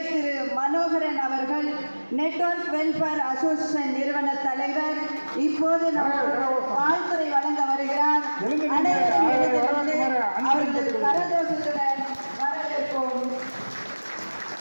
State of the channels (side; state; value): both; inverted; correlation -1.00